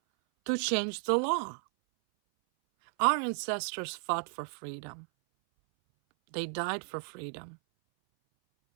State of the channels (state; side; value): silent; left; 56 dB below the other